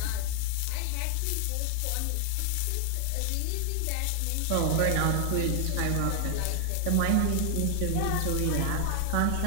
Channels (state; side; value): different; both; correlation 0.00